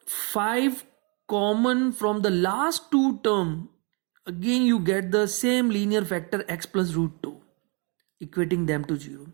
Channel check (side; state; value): left; quieter; 33.6 dB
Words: 5 common from the last two term, again you get the same linear factor x plus root 2, equating them to 0.